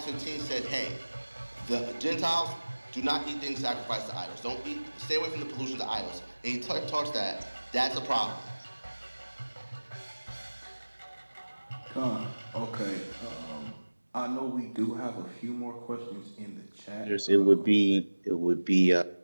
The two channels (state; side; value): inverted; both; correlation -1.00